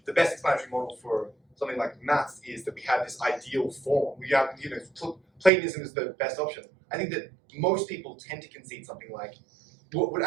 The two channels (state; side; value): drops out; left; at 5.5 s